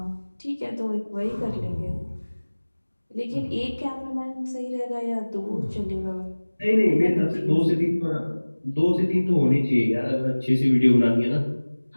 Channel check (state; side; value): inverted; both; correlation -1.00